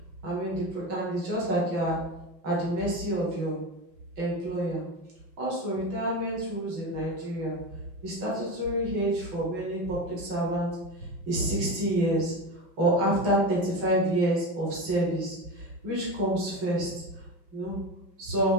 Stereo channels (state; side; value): late; left; 5.9 ms